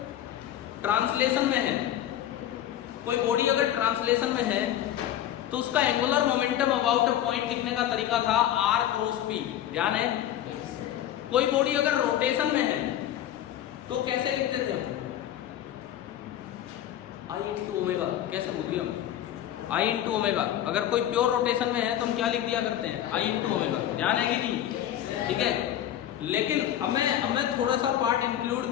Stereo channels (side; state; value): right; quieter; 11.6 dB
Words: ट्रांसलेशन में है, कोई बॉडी अगर ट्रांसलेशन में है तो उसका angular momentum about a point लिखने का तरीका था r क्रॉस p, ध्यान है। कोई बॉडी अगर रोटेशन में है तो कैसे लिखते थे हम, i इंटू ओमेगा, कैसे बोलिए हम, i इंटू ओमेगा। अगर कोई प्योर रोटेशन में है तो हम क्या लिख दिया करते हैं, i इंटू ओमेगा, ध्यान है कि नहीं। ठीक है, लेकिन अब मैं थोड़ा सा पार्ट इंक्लूड